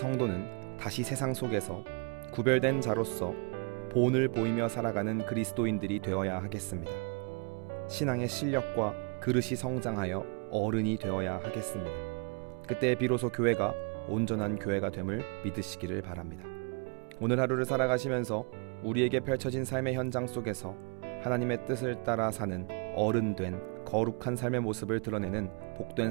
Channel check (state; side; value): quieter; left; 36.3 dB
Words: 다시 세상 속에서 구별된 자로서 본을 보이며 살아가는 그리스도인들이 되어야 하겠습니다. 신앙의 실력과 그릇이 성장하여 어른이 되어야 하겠습니다. 그때 비로소 교회가 온전한 교회가 됨을 믿으시기를 바랍니다. 오늘 하루를 살아가시면서 우리에게 펼쳐진 삶의 현장 속에서 하나님의 뜻을 따라 사는 어른된 거룩한 삶의 모습을 드러내는 복된